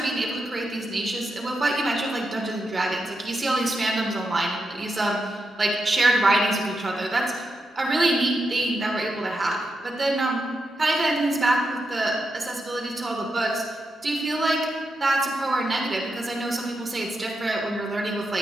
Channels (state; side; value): normal; both; correlation 0.86